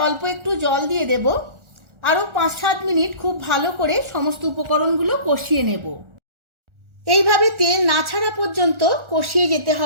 অল্প একটু জল দিয়ে দেব। আরও 5-7 মিনিট খুব ভালো করে সমস্ত উপকরণগুলো কষিয়ে নেব। এইভাবে তেল না ছাড়া পর্যন্ত কষিয়ে যেতে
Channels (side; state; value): left; late; 1.4 ms